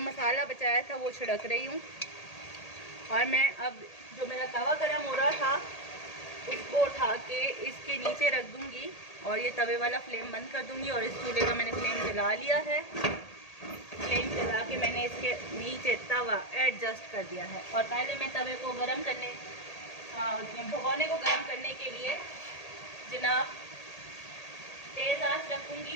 मसाला बचाया था वो छिड़क रही हूँ। और मैं अब जो मेरा तवा गरम हो रहा था उसको उठा के इसके नीचे रख दूँगी और ये तवे वाला फ्लेम बंद कर दूँगी। और इस चूल्हे का मैंने फ्लेम जला लिया है, फ्लेम जला के मैंने इसके नीचे तवा एडजस्ट कर दिया है। और पहले मैं तवे को गर्म करने भगोने को गर्म करने के लिए जनाब तेज़ आंच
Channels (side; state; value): right; late; 1.8 ms